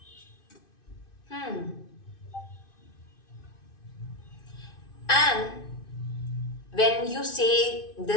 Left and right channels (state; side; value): late; right; 2.5 ms